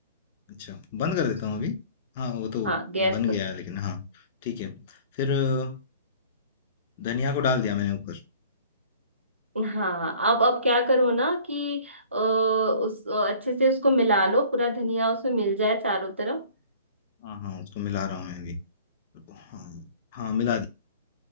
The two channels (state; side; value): inverted; both; correlation -0.49